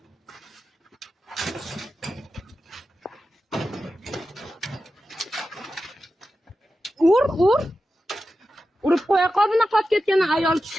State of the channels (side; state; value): both; normal; correlation 0.92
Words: Ur. Urib qo'ya qol bunaqa qolib ketgan